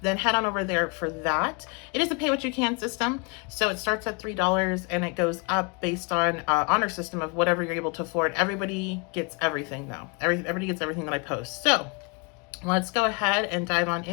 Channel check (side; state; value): right; quieter; 32.5 dB